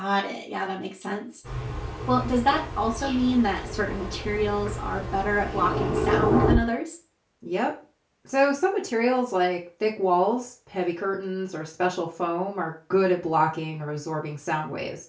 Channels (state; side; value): identical; both; correlation 1.00